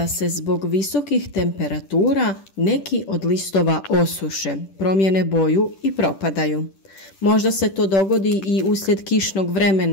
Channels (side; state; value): right; late; 10 ms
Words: se zbog visokih temperatura neki od listova osuše, promijene boju i propadaju. Možda se to dogodi i uslijed kišnog